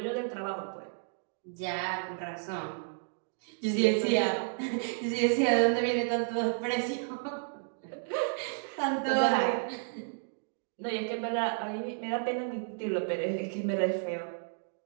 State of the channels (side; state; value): left; silent; digital silence